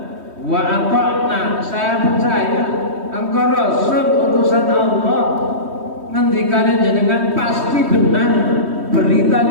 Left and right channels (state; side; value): late; left; 3.2 ms